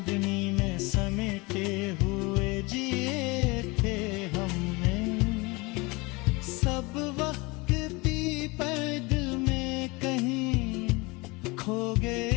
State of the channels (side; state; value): right; quieter; 25.4 dB